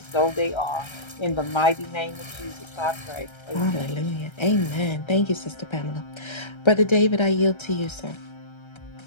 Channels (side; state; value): right; late; 1.3 ms